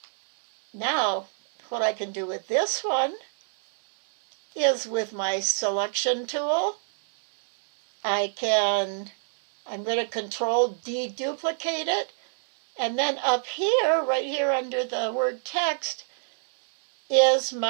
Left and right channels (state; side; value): silent; left; digital silence